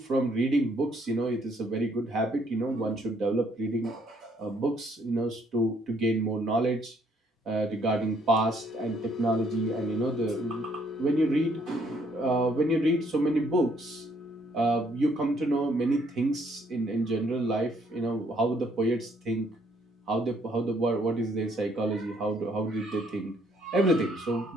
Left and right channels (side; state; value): both; normal; correlation 0.67